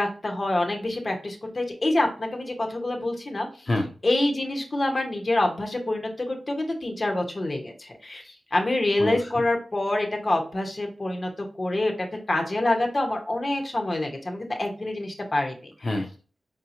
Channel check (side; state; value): both; normal; correlation 0.97